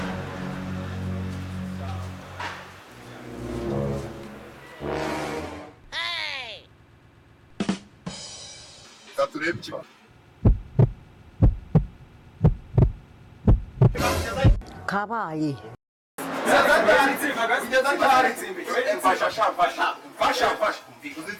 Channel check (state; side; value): identical; both; correlation 1.00